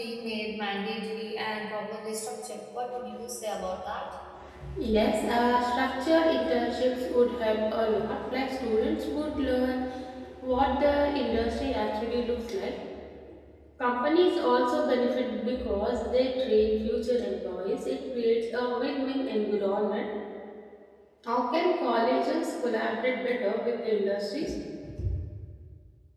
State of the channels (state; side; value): identical; both; correlation 1.00